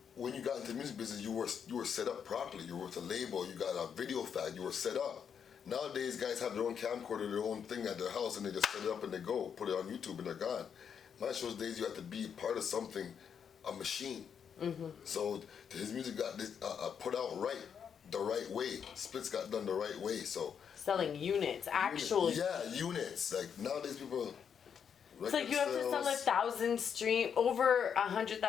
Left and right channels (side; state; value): right; quieter; 7.5 dB